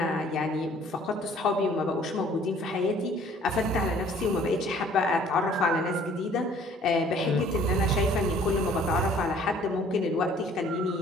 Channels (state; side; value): normal; both; correlation 0.56